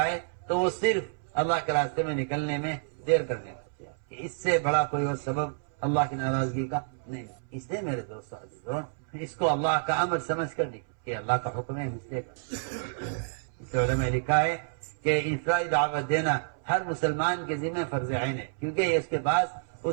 ہے تو وہ صرف اللہ کے راستے میں نکلنے میں دیر کرنے کا. اس سے بڑا کوئی اور سبب اللہ کی ناراضگی کا نہیں. اس لیے میرے دوستو عزیزو اس کو اللہ کا امر سمجھ کر نہیں کہ اللہ کا حکم ہے مسئلے کا. اس علماء نے لکھا ہے کہ انفرادی دعوت دینا ہر مسلمان کے ذمہ فرض عین ہے کیونکہ یہ اس کے پاس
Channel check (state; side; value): silent; left; 58 dB below the other